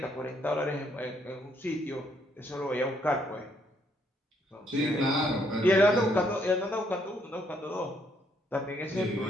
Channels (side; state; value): both; normal; correlation 0.71